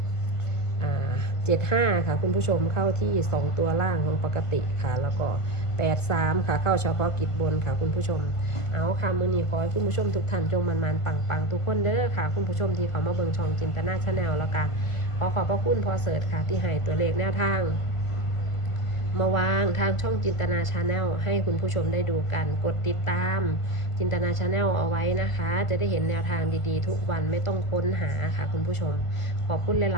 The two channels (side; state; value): right; late; 1.5 ms